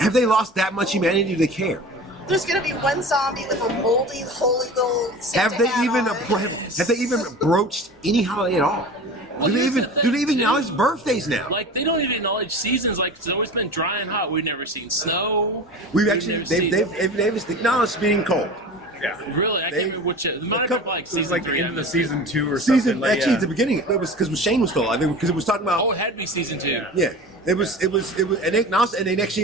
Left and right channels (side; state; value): both; normal; correlation 0.35